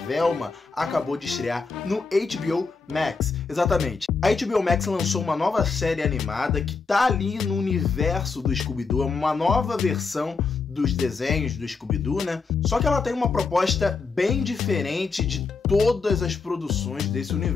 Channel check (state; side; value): quieter; right; 4.6 dB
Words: acabou de estrear no HBO Max. Exatamente. A HBO Max lançou uma nova série animada que tá ali no universo do Scooby-Doo, é uma nova versão dos desenhos do Scooby-Doo, né? Só que ela tem uma proposta bem diferente de todas as produções desse